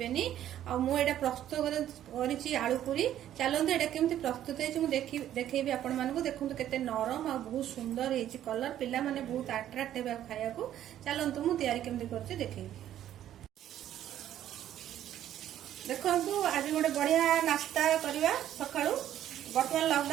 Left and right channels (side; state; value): left; quieter; 11.6 dB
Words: आ मु एटा प्रस्तुत करिछि आलू पूरी। चलंतु एटा केमती प्रस्तुत हेछि मु देखैबे आपण मानकु। देखंतु केते नरम आ बहुत सुंदर हेछि कलर। पिला माने बहुत अट्रैक्ट हेबे खाया को। चलंतु मु तैयारी केमती करछि देखैबे। देखंतु आज गोटे बढ़िया नास्ता करबा सकाळू। बर्तमान